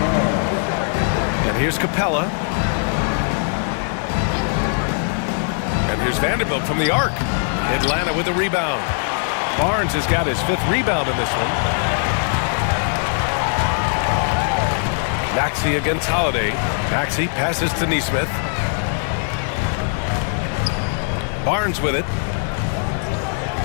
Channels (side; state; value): right; silent; 57 dB below the other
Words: And here's Capella. And here's Vanderbilt from the arc. Atlanta with a rebound. Barnes has got his 5th rebound in this one. Maxey against Holiday. Maxey passes to Nesmith. Barnes with it.